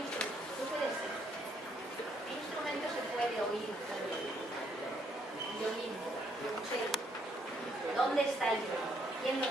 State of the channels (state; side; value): normal; both; correlation 0.70